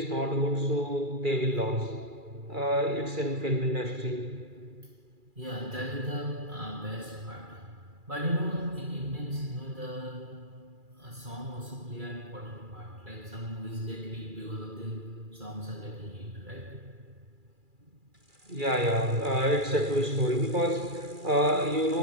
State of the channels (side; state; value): left; late; 2.4 ms